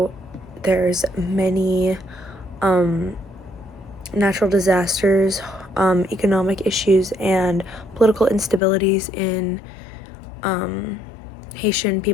there's many natural disasters, economic issues, and political instabilities in Haitian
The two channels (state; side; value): drops out; right; at 8.6 s